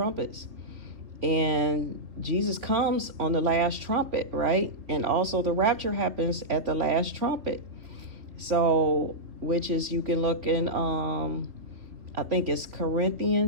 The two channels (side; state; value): left; late; 3.5 ms